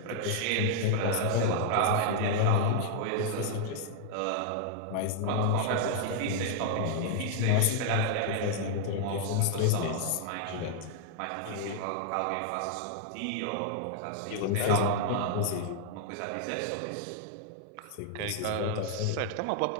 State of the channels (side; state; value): both; different; correlation -0.01